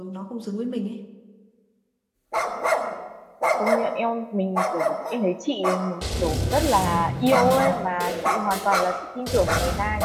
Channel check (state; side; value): identical; both; correlation 1.00